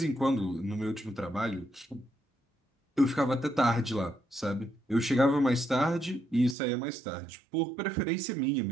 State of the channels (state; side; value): drops out; left; at 6.6 s